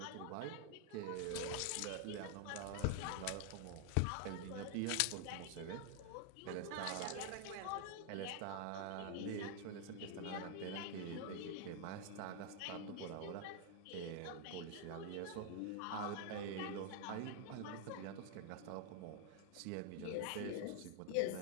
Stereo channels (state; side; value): different; both; correlation 0.00